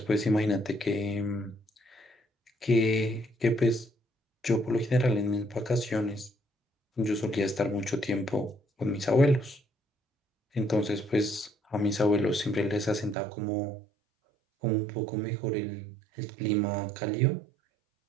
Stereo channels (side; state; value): left; drops out; at 13.2 s